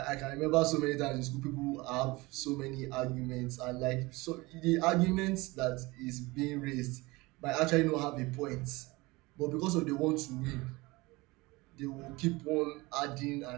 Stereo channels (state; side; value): quieter; left; 22.7 dB